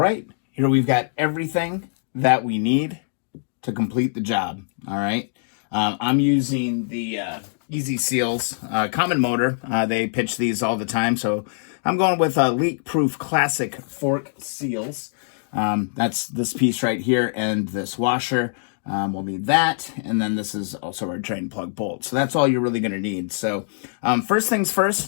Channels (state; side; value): silent; right; digital silence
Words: here we've got everything that we need to complete the job. All right, I'm using the Easy Seals common motor. They pitch these all the time, so I'm going with leak-proof classic fork seals. That's this piece right here and this washer. We'll need that, and then this is also our drain plug bolt. So that's all you're really going to need. So first things